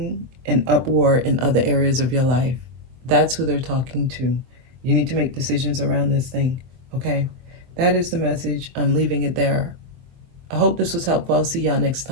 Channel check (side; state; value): left; late; 23 ms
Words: an uproar in other areas of your life. That's who they're talking to. You need to make decisions around this thing. Okay, that is the message. I'm leaving it there. I hope this was helpful. I'll see y'all next